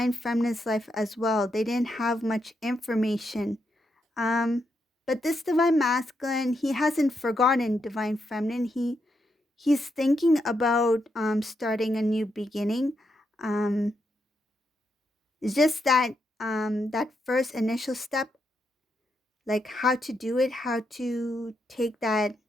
feminine's life as well. They didn't have much information. Um, but this divine masculine, he hasn't forgotten divine feminine. He's thinking about starting a new beginning. Um, it's just that that first initial step, like how to do it, how to take that,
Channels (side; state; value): both; normal; correlation 0.81